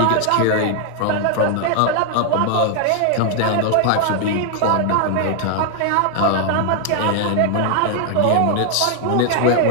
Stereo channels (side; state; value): both; different; correlation 0.00